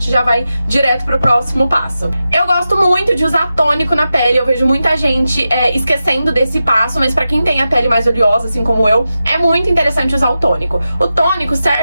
já vai direto pro próximo passo. Eu gosto muito de usar tônico na pele, eu vejo muita gente esquecendo desse passo, mas pra quem tem a pele mais oleosa, assim como eu, é muito interessante usar o tônico. O tônico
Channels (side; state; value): both; inverted; correlation -0.91